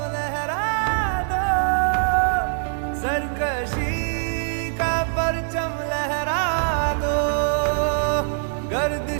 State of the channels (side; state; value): left; silent; digital silence